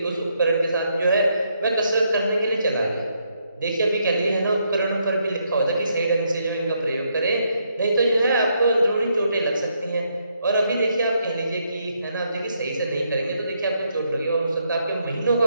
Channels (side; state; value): both; inverted; correlation -0.76